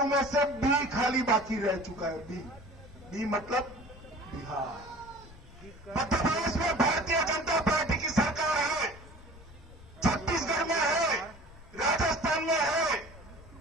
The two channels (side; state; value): left; noise; rumble, 20 dB below the sound